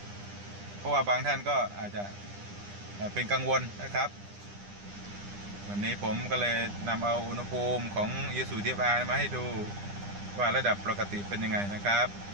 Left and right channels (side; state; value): left; late; 9.9 ms